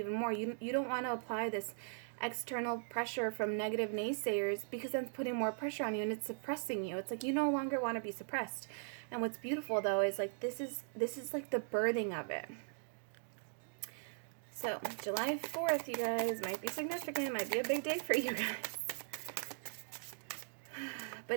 more. You don't want to apply this external pressure from negative naysayers, because then it's putting more pressure on you and it's suppressing you. It's like you no longer want to be suppressed. And what's beautiful though is like this is like the birthing of it. So July 4th, you guys, might be significant, might be a big day for you guys.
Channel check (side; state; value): left; silent; digital silence